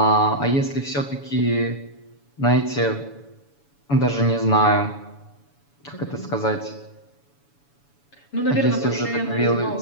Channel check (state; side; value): late; right; 7.0 ms